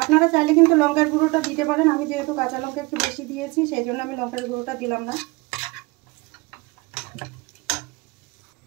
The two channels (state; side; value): quieter; left; 24.9 dB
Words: চাইলে কিন্তু লঙ্কার গুঁড়োটা দিতে পারেন। আমি যেহেতু কাঁচা লঙ্কা একটু বেশি দিয়েছি সেই জন্য আমি লঙ্কার গুঁড়োটা দিলাম না।